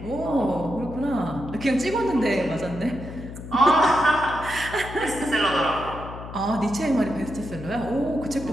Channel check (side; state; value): left; noise; hum, 11 dB below the sound